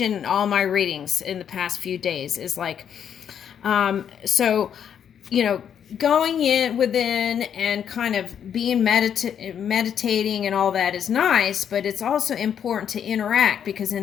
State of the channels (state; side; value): quieter; right; 8.6 dB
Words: in all my readings in the past few days. Is like, so, you know, going in within and kind of being meditating and all that is nice, but it's also important to interact, because